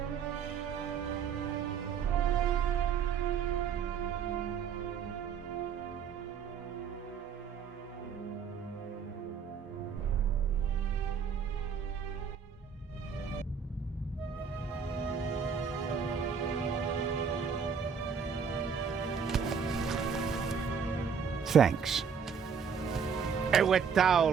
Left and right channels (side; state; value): left; quieter; 6.5 dB